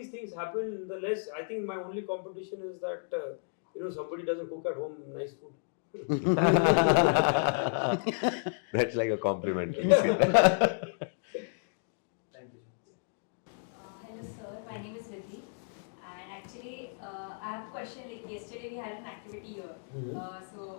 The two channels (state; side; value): silent; right; digital silence